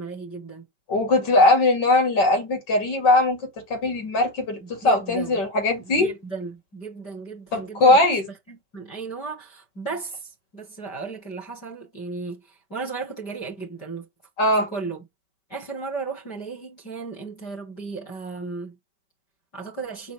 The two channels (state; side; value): late; right; 5.2 ms